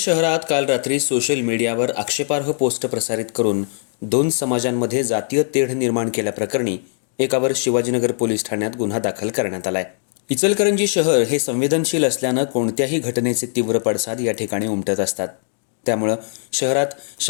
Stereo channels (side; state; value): right; silent; 65 dB below the other